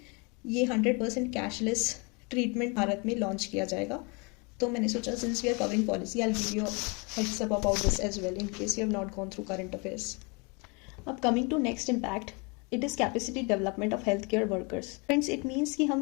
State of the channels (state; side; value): quieter; right; 30.8 dB